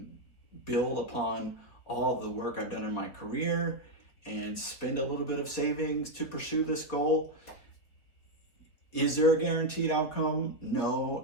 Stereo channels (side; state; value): right; late; 3.9 ms